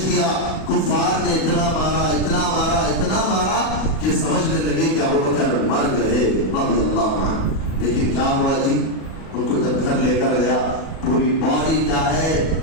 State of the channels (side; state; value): right; late; 37 ms